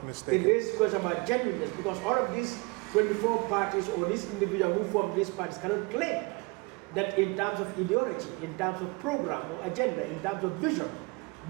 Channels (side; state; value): left; quieter; 28.2 dB